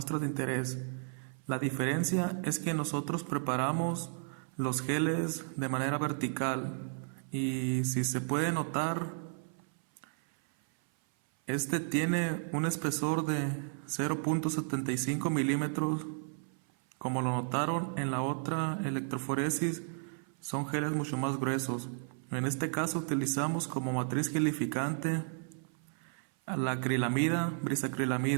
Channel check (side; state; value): left; silent; 55 dB below the other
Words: de interés. La diferencia es que nosotros preparamos los geles de manera vertical, y si se puede notar, este tiene un espesor de 0.75 milímetros. Como lo notaron en la otra electroforesis, son geles mucho más gruesos. En este caso utilizamos como matriz gelificante a la acrilamida,